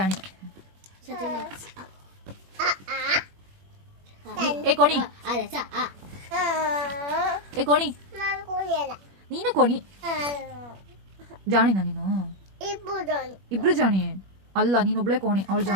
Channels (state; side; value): late; left; 21 ms